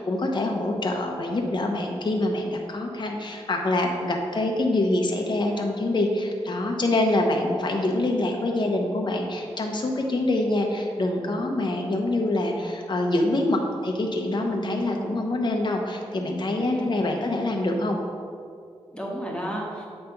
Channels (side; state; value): both; normal; correlation 0.76